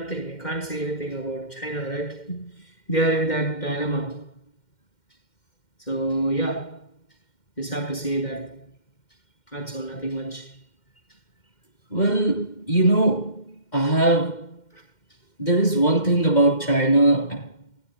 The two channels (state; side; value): late; right; 2.1 ms